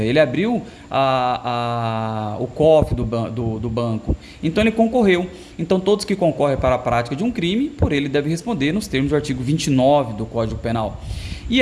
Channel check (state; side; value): identical; both; correlation 1.00